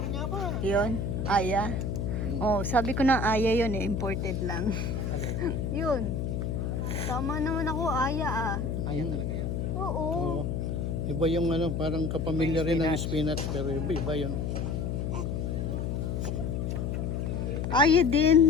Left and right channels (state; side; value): noise; left; hum, 1 dB below the sound